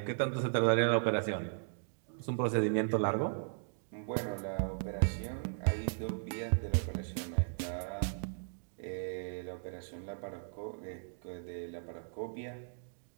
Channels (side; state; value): left; silent; digital silence